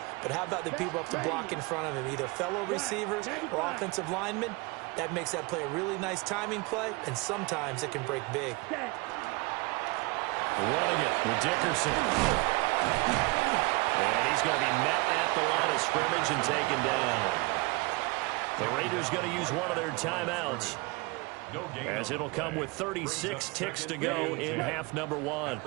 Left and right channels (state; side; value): quieter; left; 25.8 dB